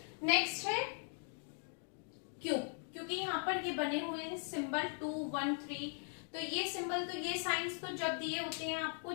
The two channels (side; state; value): right; silent; 51 dB below the other